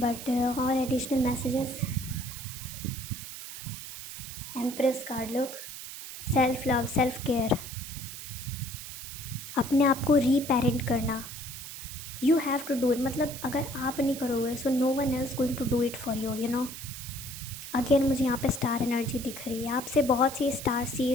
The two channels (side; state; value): right; noise; hiss, 10 dB below the sound